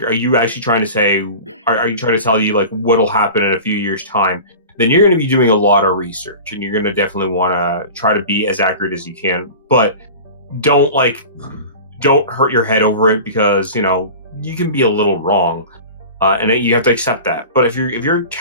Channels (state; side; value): inverted; both; correlation -0.35